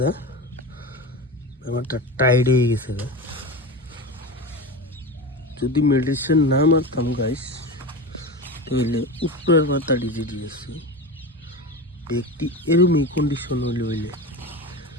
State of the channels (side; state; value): both; normal; correlation 0.25